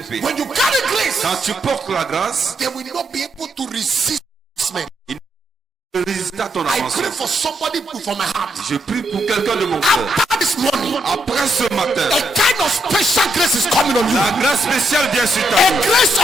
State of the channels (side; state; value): both; normal; correlation 0.78